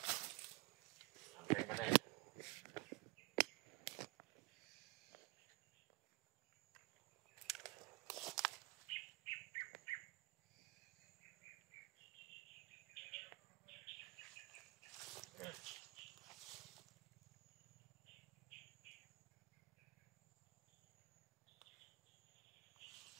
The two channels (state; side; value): quieter; left; 23.8 dB